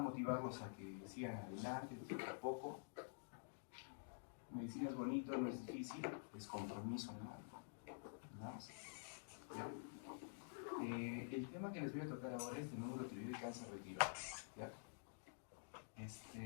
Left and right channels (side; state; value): right; silent; digital silence